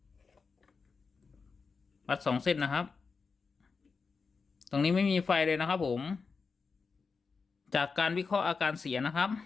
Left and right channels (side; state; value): right; quieter; 4.9 dB